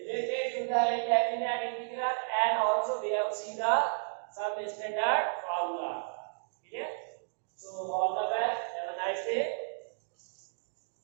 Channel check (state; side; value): silent; left; digital silence